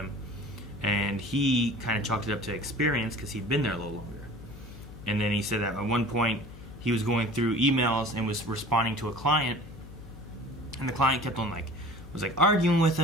And he kind of chalked it up to experience because he'd been there a little longer. And then he said that at one point he was going through emails and was responding to a client, and the client kept on was arguing with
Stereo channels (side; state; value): left; noise; hum, 16 dB below the sound